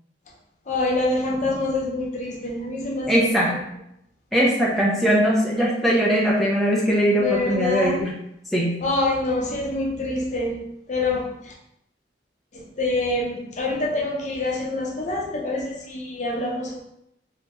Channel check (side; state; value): both; normal; correlation 0.50